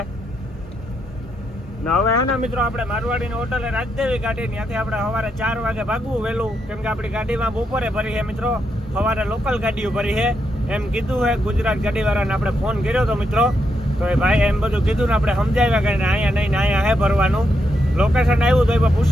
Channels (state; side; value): normal; both; correlation 0.81